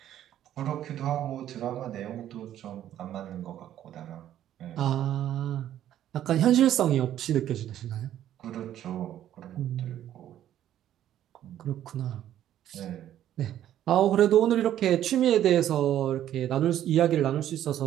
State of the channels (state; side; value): quieter; left; 11.6 dB